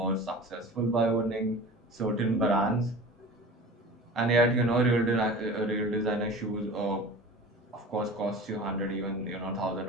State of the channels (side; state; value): both; normal; correlation 0.37